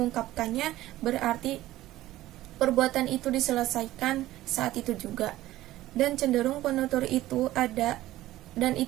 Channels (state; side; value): quieter; left; 15.7 dB